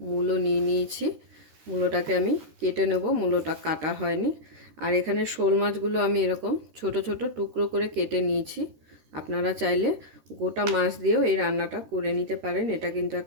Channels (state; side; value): late; left; 13 ms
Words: মূলো নিয়ে নিয়েছি। মূলোটাকে আমি কেটে নেব, মূলোটা কাটা হয়নি। আর এখানে শোল মাছগুলো আমি এরকম ছোট ছোট টুকরো করে কেটে নিয়েছি। আপনারা চাইলে গোটা মাছ দিয়েও এই রান্নাটা করে নিতে পারেন। এটা কিন্তু